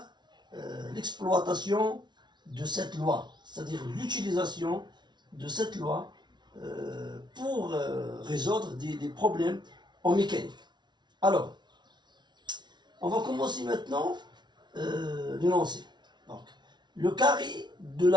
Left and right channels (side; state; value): left; late; 0.21 ms